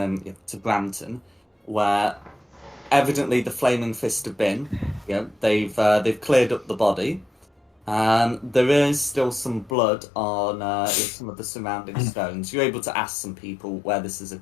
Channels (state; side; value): drops out; right; at 9.8 s